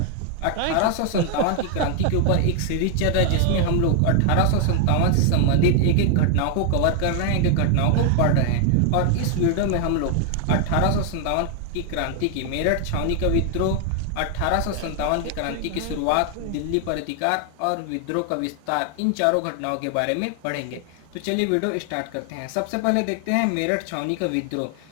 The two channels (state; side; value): different; both; correlation 0.00